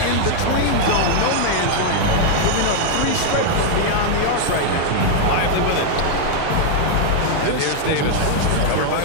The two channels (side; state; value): both; different; correlation 0.00